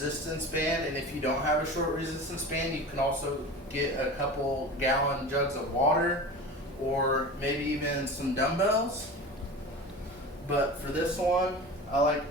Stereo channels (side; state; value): both; normal; correlation 0.33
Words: band, and if you don't have a short resistance band, you can also get a couple gallon jugs of water or maybe even some dumbbells. But for this one, I